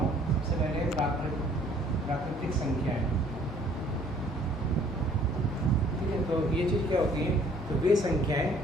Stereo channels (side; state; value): both; normal; correlation 0.58